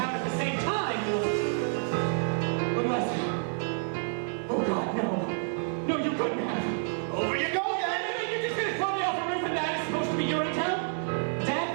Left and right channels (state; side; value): silent; left; digital silence